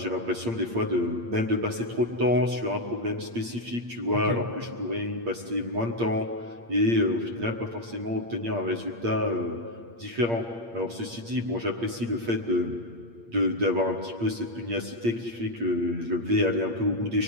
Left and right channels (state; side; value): late; left; 8.6 ms